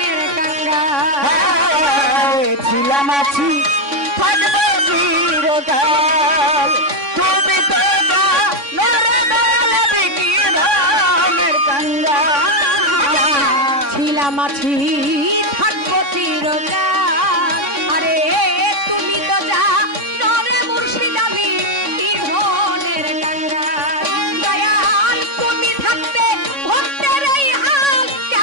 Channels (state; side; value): late; left; 3.6 ms